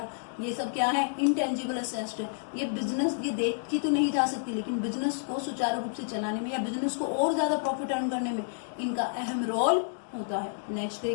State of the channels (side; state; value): right; silent; 58 dB below the other